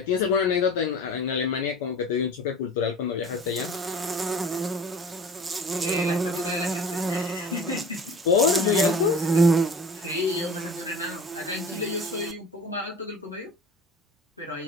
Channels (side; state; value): both; normal; correlation 0.40